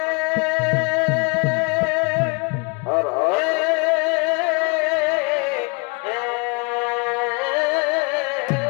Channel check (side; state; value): right; quieter; 32.8 dB